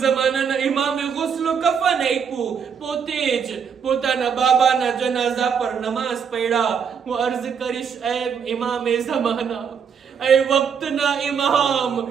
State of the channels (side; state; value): left; quieter; 6.9 dB